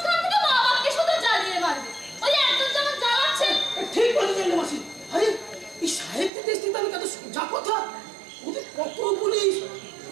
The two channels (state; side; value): drops out; left; at 6.3 s